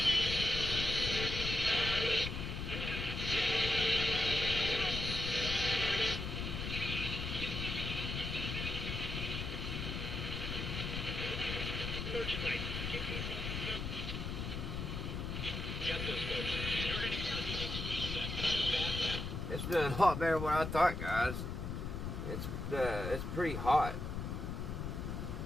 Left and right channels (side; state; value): left; noise; rumble, 4 dB below the sound